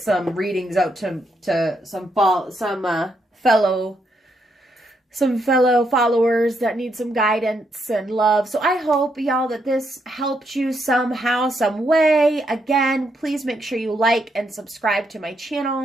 readings out to some fellow some fellow followers that need some guidance and love. So I hope, y'all, that this helped you somehow, some way. Again, please make sure you like and subscribe to my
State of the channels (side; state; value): both; normal; correlation 0.78